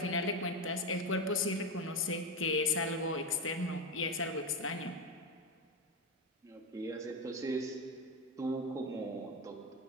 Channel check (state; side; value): normal; both; correlation 0.13